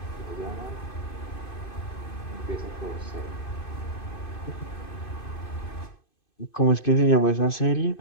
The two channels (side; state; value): right; late; 2.5 ms